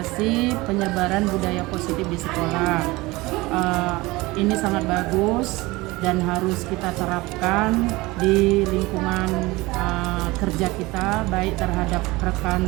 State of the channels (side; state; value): left; quieter; 21.5 dB